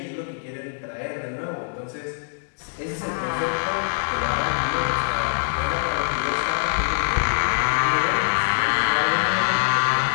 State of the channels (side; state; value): right; silent; digital silence